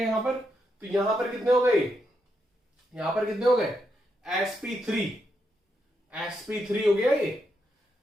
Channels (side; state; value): both; normal; correlation 0.82